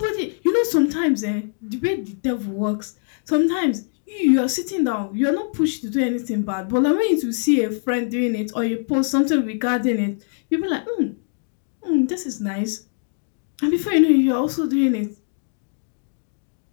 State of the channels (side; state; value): right; silent; digital silence